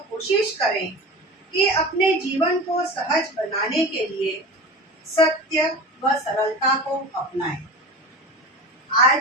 कोशिश करें कि अपने जीवन को सहज बनाने के लिए सत्य व सरलता को अपनाएं।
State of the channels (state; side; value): normal; both; correlation 0.31